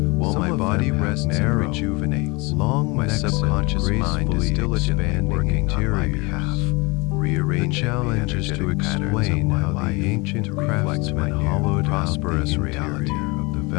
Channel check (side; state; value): right; quieter; 26.3 dB